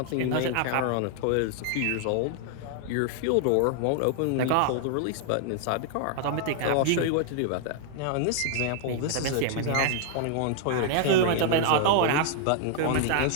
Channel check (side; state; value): both; different; correlation 0.00